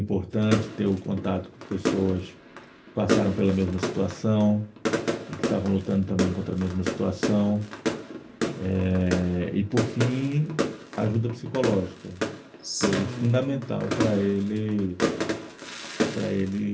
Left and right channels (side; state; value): both; identical; correlation 1.00